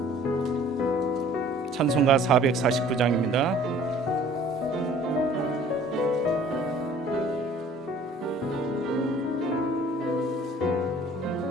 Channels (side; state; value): both; normal; correlation 0.52